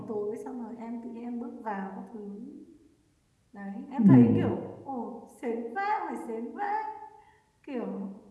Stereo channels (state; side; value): identical; both; correlation 1.00